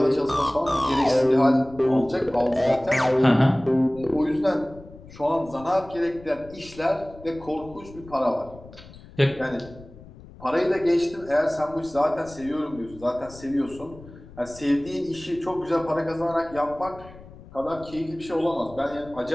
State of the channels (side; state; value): left; noise; rumble, 19 dB below the sound